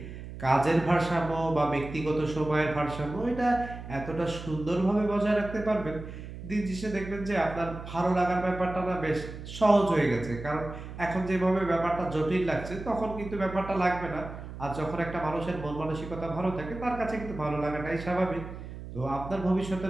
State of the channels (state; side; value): noise; right; hum, 11 dB below the sound